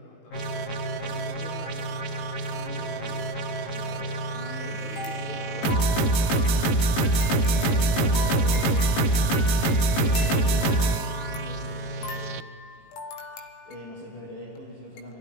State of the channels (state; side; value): late; right; 19 ms